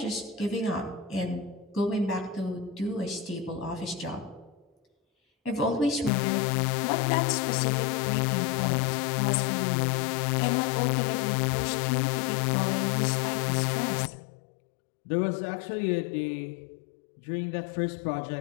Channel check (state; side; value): drops out; right; at 6.1 s